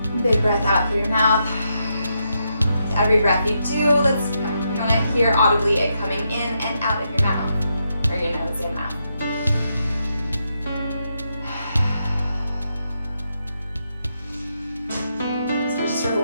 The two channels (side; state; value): both; inverted; correlation -0.82